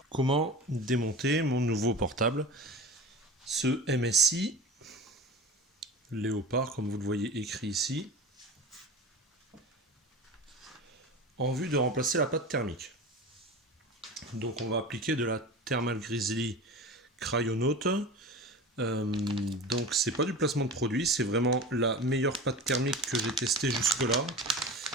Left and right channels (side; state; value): both; normal; correlation 0.33